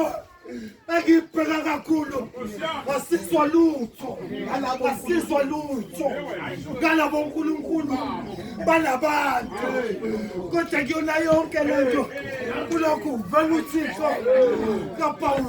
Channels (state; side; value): identical; both; correlation 1.00